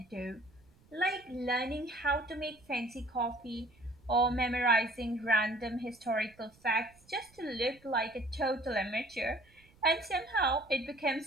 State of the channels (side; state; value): right; noise; rumble, 29 dB below the sound